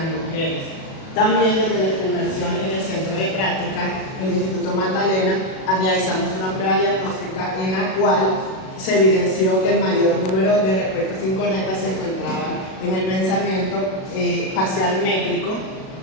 mujeres. También desde nuestra inmersión en el centro de práctica, el Instituto Magdalena, realizamos una prueba diagnóstica en la cual se evidenció que el mayor número de respuestas incorrectas se encontraban en el pensamiento facial métrico,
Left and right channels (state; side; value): late; right; 37 ms